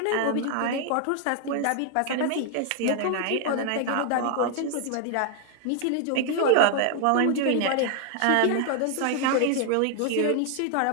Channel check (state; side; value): different; both; correlation 0.00